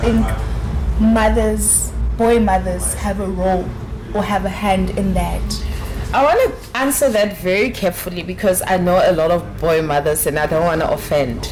boy mothers have a role or have a hand in that? I want to answer that very carefully because I know a lot of boy mothers and I don't want to offend.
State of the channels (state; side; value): identical; both; correlation 1.00